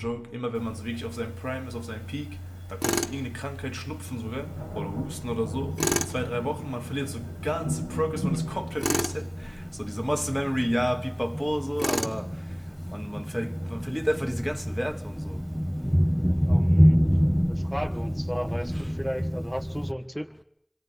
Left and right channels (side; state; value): both; identical; correlation 1.00